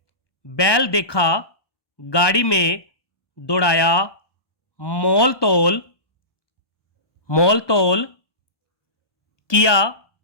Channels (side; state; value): right; late; 1.1 ms